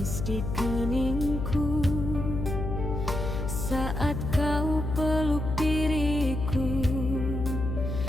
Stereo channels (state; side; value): noise; left; hum, 4 dB below the sound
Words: di keningku saat kau peluk diriku